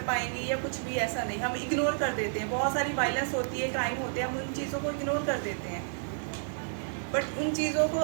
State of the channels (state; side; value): silent; left; digital silence